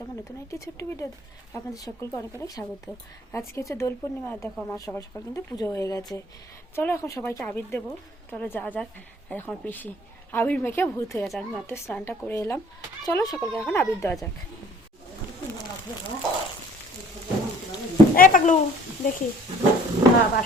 আমার নতুন একটি ছোট্ট ভিডিও আপনাদের সকলকে অনেক অনেক স্বাগত। আজকে হচ্ছে দোল পূর্ণিমা। দেখো আমার সকাল সকাল কিন্তু পুজো হয়ে গেছে। চলো এখন সবাইকে আবির দেবো, চলো যা যাক। আর এখন পিসি আবির মেখে ভূত হয়ে গেছে। আমি মাত্র স্নানটা করে এলাম। চলো সকলকে এখন আবির দেওয়া যাক। এই পাগলু দেখি বাবা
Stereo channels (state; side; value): normal; both; correlation 0.53